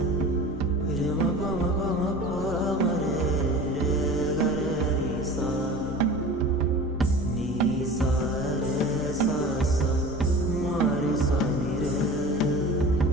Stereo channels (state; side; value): normal; both; correlation 0.38